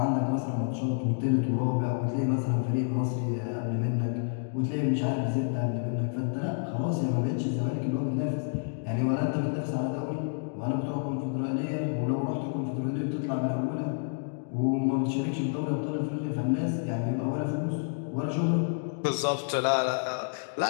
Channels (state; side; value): silent; right; digital silence